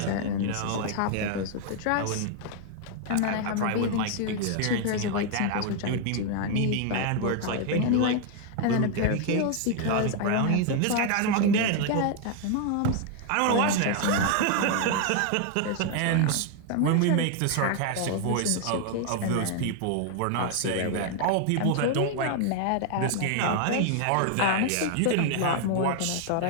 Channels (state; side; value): different; both; correlation 0.00